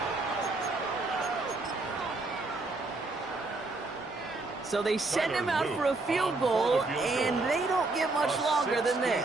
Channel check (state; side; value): quieter; left; 3.3 dB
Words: So they send him out for a field goal, and they don't get much longer than